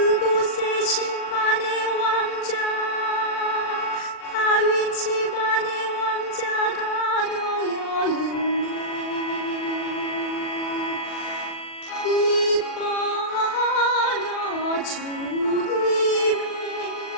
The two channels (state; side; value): late; right; 40 ms